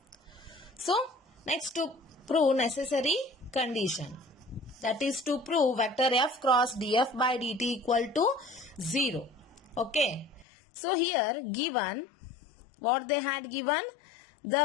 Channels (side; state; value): right; drops out; at 10.5 s